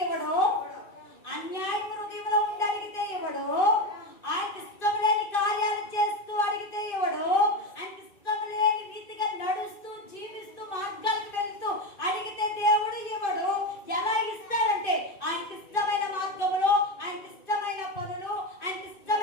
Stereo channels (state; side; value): late; right; 2.6 ms